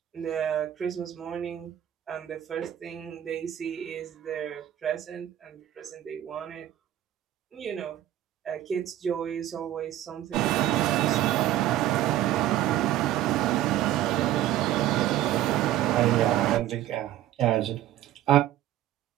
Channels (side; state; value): left; quieter; 12.8 dB